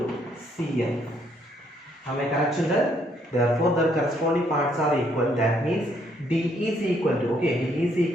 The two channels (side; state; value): both; normal; correlation 0.69